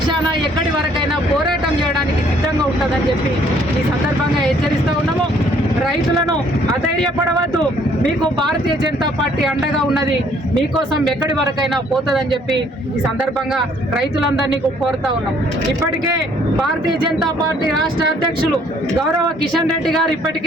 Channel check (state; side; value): normal; both; correlation 0.62